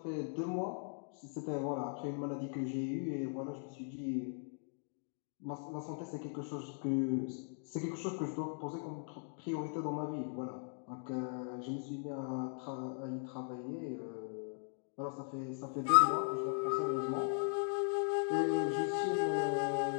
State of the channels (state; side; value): silent; right; 52 dB below the other